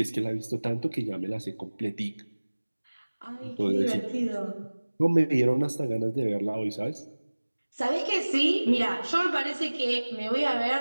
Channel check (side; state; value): both; inverted; correlation -1.00